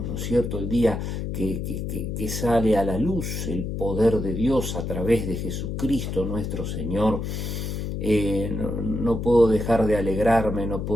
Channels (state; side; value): noise; left; hum, 4 dB below the sound